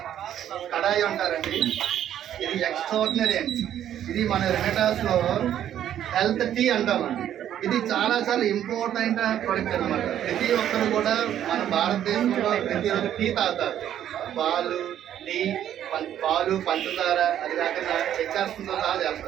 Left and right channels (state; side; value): quieter; left; 10.8 dB